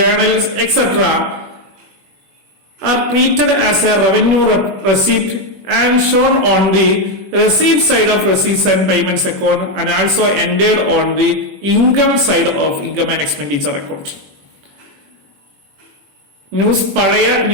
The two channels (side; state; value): left; late; 21 ms